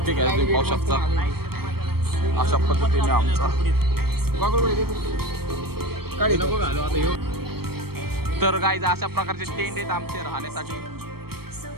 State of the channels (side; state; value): left; late; 0.95 ms